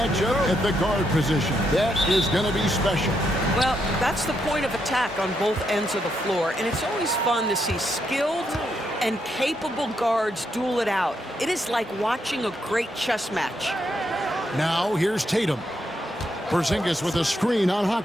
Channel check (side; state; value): both; normal; correlation 0.79